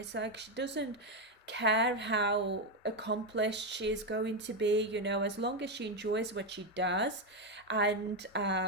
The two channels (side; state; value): both; normal; correlation 0.07